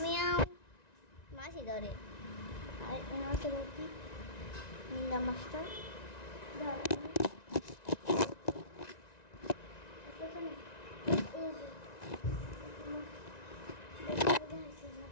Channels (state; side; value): late; right; 1.9 ms